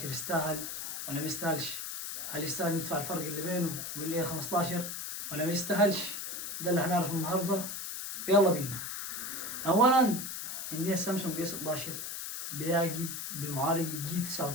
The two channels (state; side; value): noise; left; hiss, 5 dB below the sound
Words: يستاهل ولا ما يستاهلش؟ هل يستاهل ندفع الفرق اللي بينه وبين A15 ولا ما يستاهلش؟ ده اللي هنعرفه النهارده. يلا بينا. أولا عندنا السامسونج A16 بيجي بمعالج جي